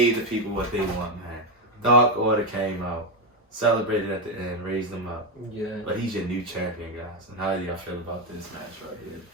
the people what they want, man. Dark Order came out. celebrated at the end, raised him up. Yeah. But he's your new champion, guys. And how do y'all feel about this match right here?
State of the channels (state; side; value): normal; both; correlation 0.07